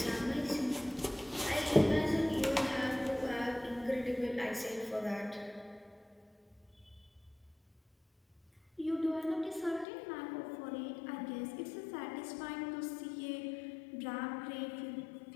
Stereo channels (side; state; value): right; drops out; at 9.9 s